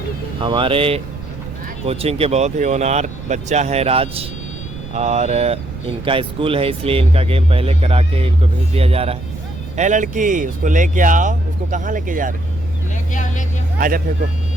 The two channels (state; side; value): noise; right; rumble, 12 dB below the sound